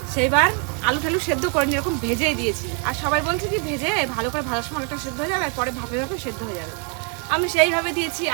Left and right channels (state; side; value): quieter; left; 37.9 dB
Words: সেইবার আলু টালু সেদ্ধ করিনি, এরকম ভেজেই দিয়েছি। আর সবাই বলছে কি ভেজে ভালো করে ভাজার সময় আলুটা সেদ্ধ হয়ে যাবে, আর পরে ভাপে ভাপে সেদ্ধ হয়ে যাবে। আমি সেইভাবে দিয়েছি